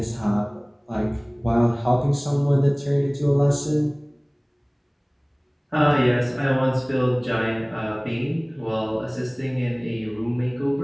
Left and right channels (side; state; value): both; identical; correlation 1.00